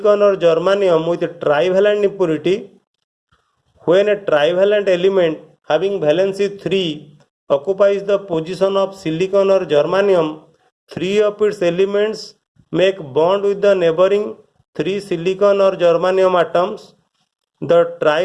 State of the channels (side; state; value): both; identical; correlation 1.00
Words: or germanium with a trivalent impurity. When a trivalent element having valency 3 occupies the position of silicon or germanium, 3 of its elements make bond with the neighboring 3 silicon or germanium atoms. The